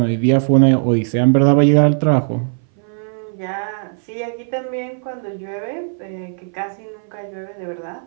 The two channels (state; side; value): silent; left; 60 dB below the other